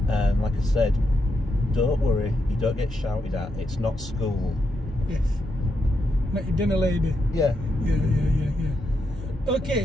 and like I said, don't worry, you don't get shouted at, it's not school. Yes. Not your dinner lady. Yeah. Yeah.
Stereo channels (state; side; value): normal; both; correlation 0.83